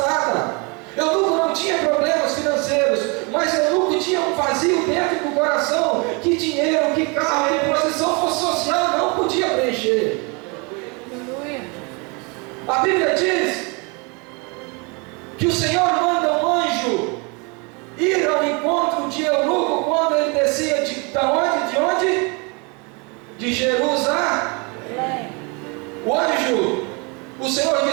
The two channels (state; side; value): quieter; left; 30.8 dB